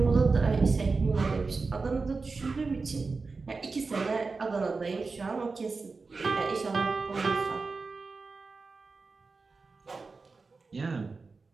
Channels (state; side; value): quieter; left; 4.2 dB